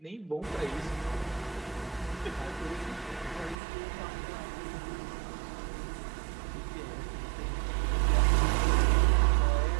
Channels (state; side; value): drops out; left; at 3.6 s